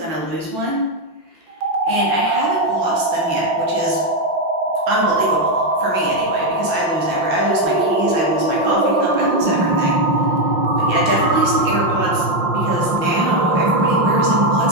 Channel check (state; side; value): late; left; 5.7 ms